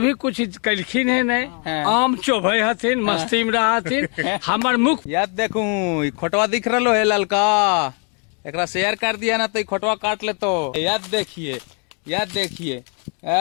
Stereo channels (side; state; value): right; quieter; 39.4 dB